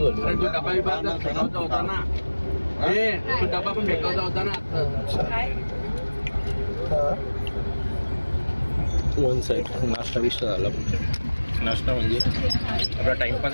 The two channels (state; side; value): inverted; both; correlation -1.00